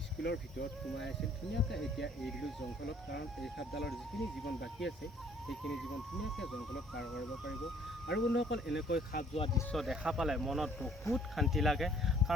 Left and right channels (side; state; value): both; normal; correlation 0.59